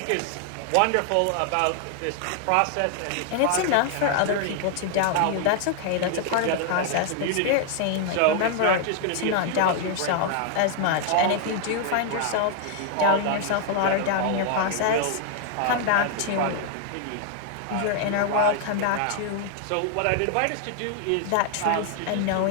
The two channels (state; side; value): different; both; correlation 0.00